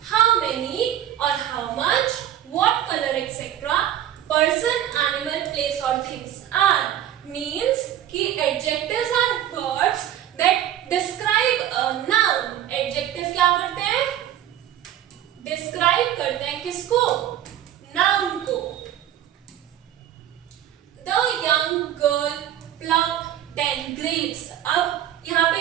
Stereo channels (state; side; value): quieter; left; 11.4 dB